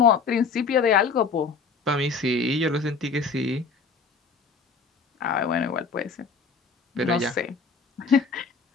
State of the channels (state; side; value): quieter; right; 4.9 dB